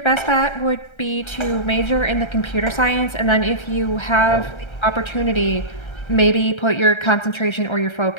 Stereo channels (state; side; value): late; right; 1.3 ms